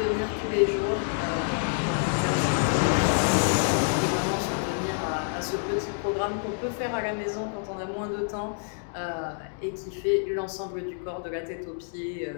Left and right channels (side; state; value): right; silent; digital silence